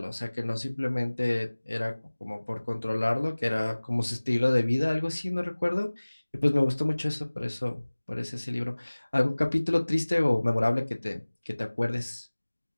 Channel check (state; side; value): inverted; both; correlation -1.00